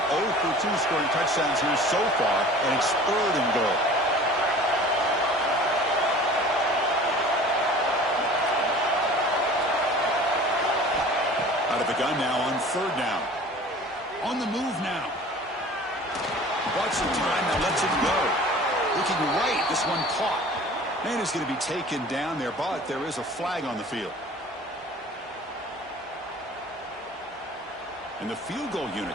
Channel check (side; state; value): both; normal; correlation 0.44